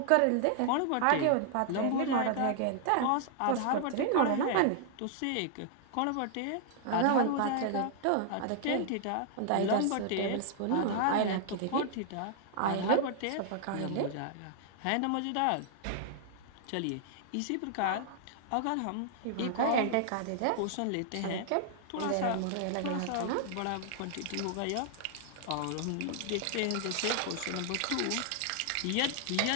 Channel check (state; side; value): different; both; correlation -0.01